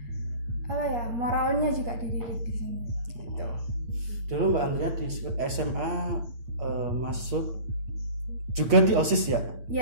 moralnya juga dididik di sini. Gitu. Dulu Mbak Andrea di SMA masuk juga di OSIS ya?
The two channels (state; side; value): late; left; 8.2 ms